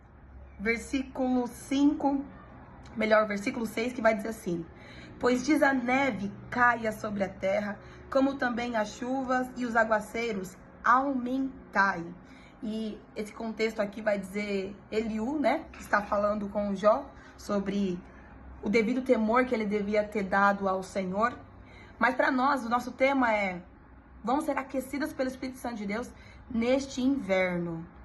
versículo 5, versículo 6, que vai dizer assim: Pois diz a neve caia sobre a terra, como também as chuvas e os aguaceiros aumentai. E esse contexto aqui vai dizer Eliú, né, que está falando com Jó sobre o devido temor que ele devia ter dado ao Senhor. Mas para nós, o nosso tema é: vamos ser aquecidas pelo Espírito Santo de Deus neste inverno.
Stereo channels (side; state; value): both; identical; correlation 1.00